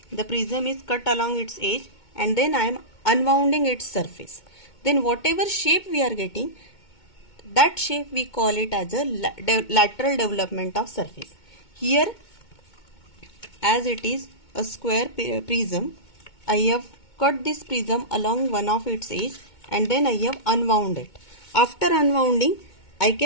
the prism is cut along its edge and then I am unwounding its surface. Then whatever shape we are getting, that shape we call it as a lateral development of surface. Here as it is a square prism, I have cut this prism along one of its edge and then I have unwound it. After unwounding, I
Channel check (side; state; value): right; late; 2.2 ms